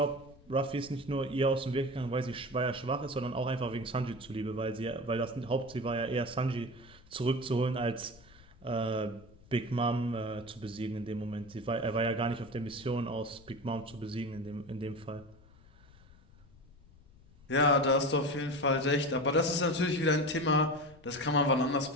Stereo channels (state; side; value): noise; left; rumble, 24 dB below the sound